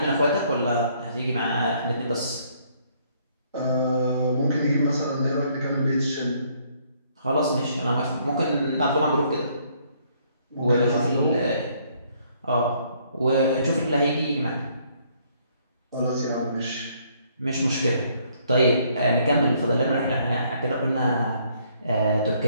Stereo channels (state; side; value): inverted; both; correlation -0.66